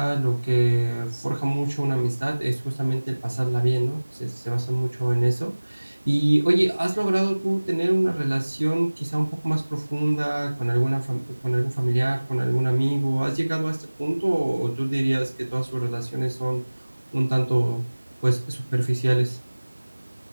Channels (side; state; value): both; inverted; correlation -1.00